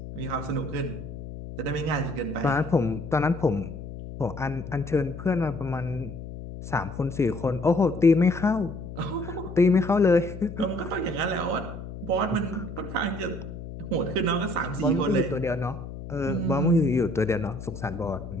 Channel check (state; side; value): noise; left; hum, 11 dB below the sound